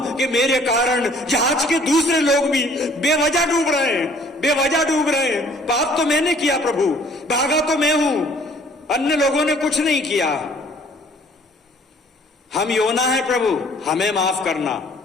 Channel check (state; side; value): normal; both; correlation 0.56